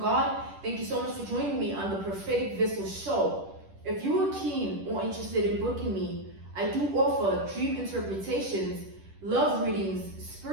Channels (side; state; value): left; late; 10 ms